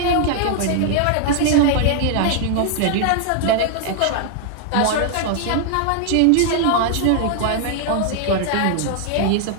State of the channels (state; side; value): different; both; correlation 0.00